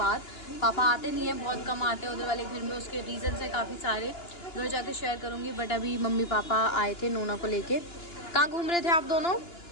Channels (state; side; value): late; right; 2.9 ms